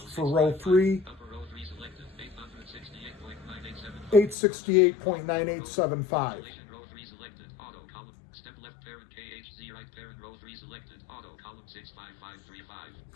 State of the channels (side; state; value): right; drops out; at 4.4 s